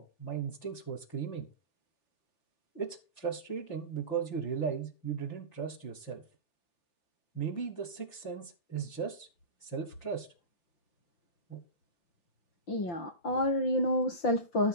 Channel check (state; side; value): late; right; 5.8 ms